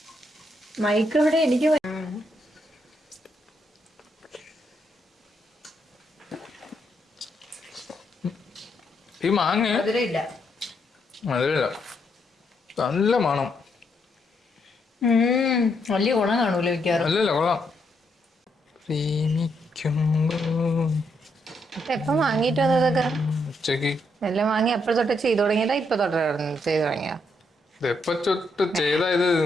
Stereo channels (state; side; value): normal; both; correlation 0.77